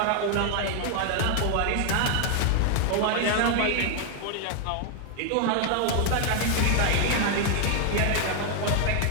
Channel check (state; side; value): different; both; correlation 0.00